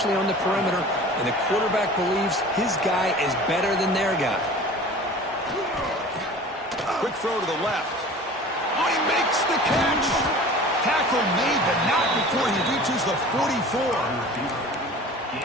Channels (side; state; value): both; normal; correlation 0.41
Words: on the perimeter. And the quarterback believes his guy is better than their guy. Quick throw to the left. Oh, he makes the catch. Tackle made, but not before he reaches the 44.